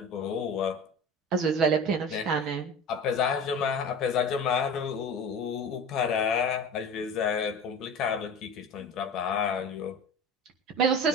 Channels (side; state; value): both; normal; correlation 0.34